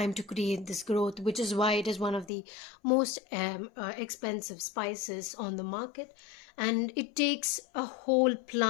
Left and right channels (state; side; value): drops out; right; at 2.3 s